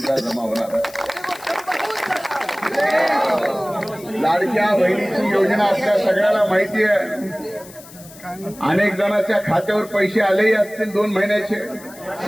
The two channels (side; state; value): left; noise; hiss, 20 dB below the sound